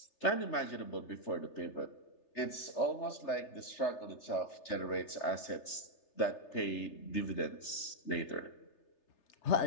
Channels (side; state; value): right; late; 3.3 ms